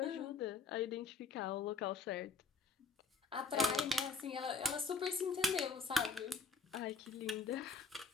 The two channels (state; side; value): quieter; right; 4.7 dB